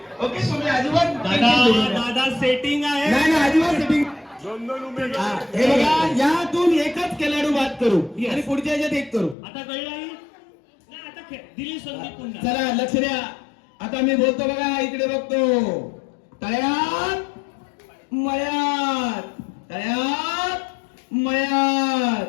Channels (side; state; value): right; drops out; at 9.3 s